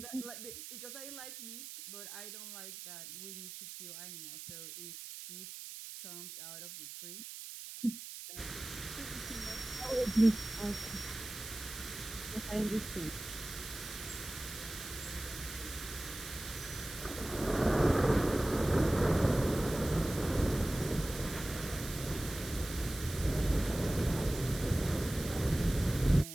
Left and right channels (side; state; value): right; noise; hiss, 10 dB below the sound